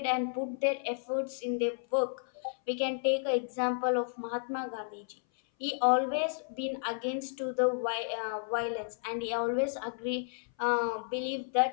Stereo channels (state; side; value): silent; right; 56 dB below the other